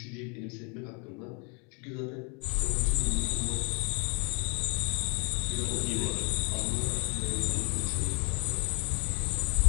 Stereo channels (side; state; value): right; quieter; 34.9 dB